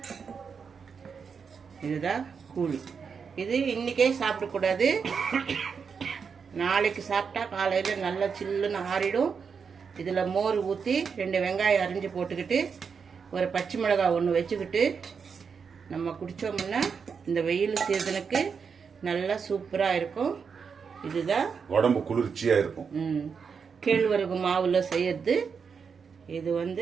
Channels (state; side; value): quieter; left; 6.0 dB